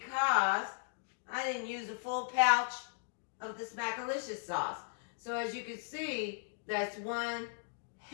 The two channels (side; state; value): right; silent; digital silence